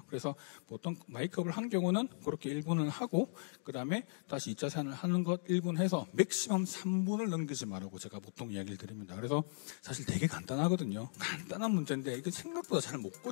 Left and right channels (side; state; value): right; silent; digital silence